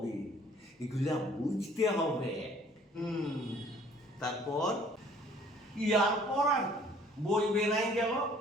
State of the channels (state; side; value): normal; both; correlation 0.56